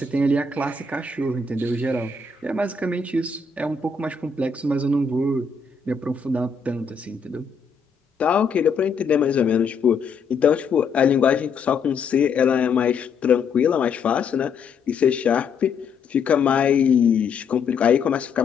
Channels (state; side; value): quieter; right; 5.2 dB